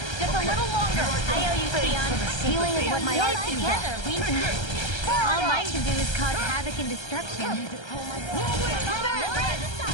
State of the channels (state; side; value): late; right; 1.3 ms